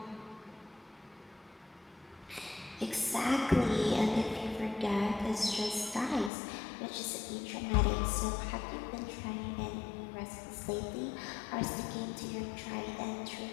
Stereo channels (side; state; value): right; drops out; at 6.3 s